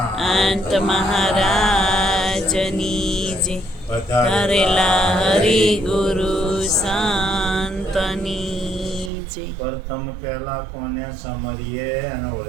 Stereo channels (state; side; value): drops out; left; at 9.1 s